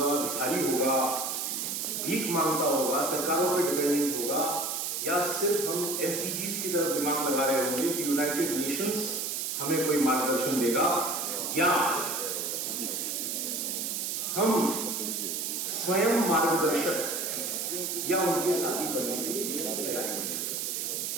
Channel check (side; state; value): right; noise; hiss, 2 dB below the sound